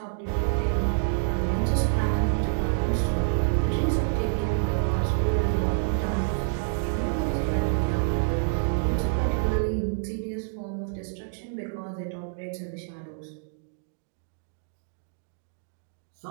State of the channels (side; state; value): left; silent; digital silence